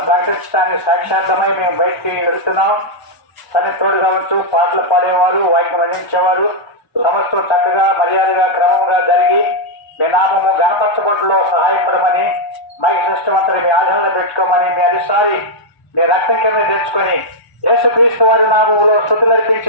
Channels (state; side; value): late; right; 1.0 ms